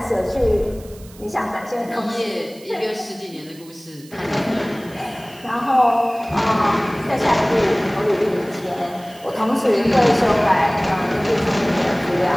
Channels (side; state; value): right; noise; hiss, 23 dB below the sound